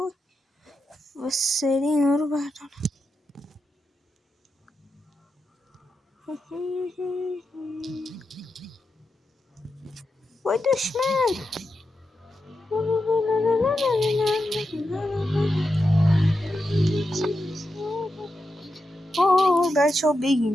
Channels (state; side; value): normal; both; correlation 0.88